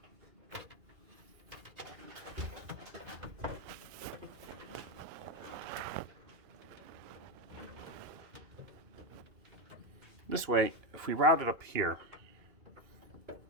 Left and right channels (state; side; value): late; left; 2.9 ms